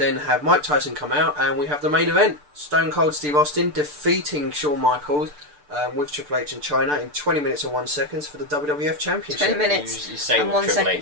have Mike Tyson come out, and we have the main event. Stone Cold Steve Austin defeating Shawn Michaels with Triple H in China in 20 minutes and 1 second for the WWF Championship. 20 minutes You say and with 1 Triple second.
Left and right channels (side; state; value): left; late; 6.8 ms